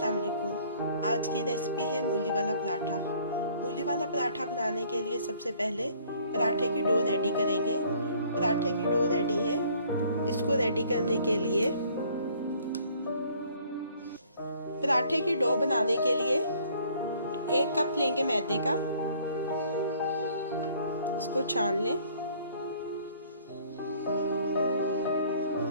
वालेकुम। आज की रेसिपी है मूली वाला पराठा। मूली वाला पराठा बनाने के लिए सबसे पहले पराठे की डो रेडी करेंगे। पराठे की डो रेडी है। इसको रेडी करने के लिए पराठे की डो बनाने के लिए 1 कप लेंगे मैदे का। इसको छान लें।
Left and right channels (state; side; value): inverted; both; correlation -0.58